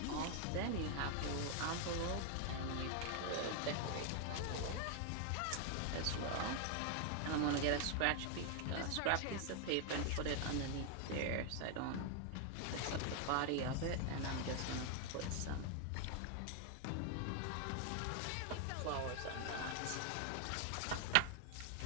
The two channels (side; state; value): both; different; correlation 0.00